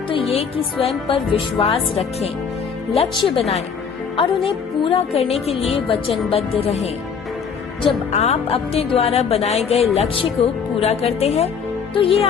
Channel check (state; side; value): quieter; right; 6.4 dB